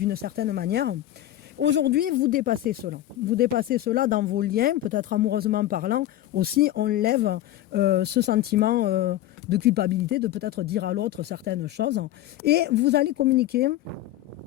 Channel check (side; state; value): right; quieter; 13.7 dB